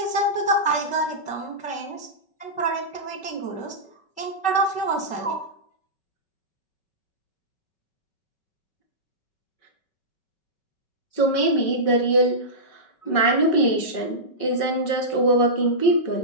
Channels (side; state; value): right; late; 5.3 ms